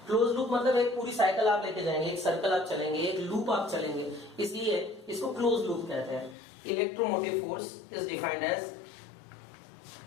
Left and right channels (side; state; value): right; drops out; at 6.4 s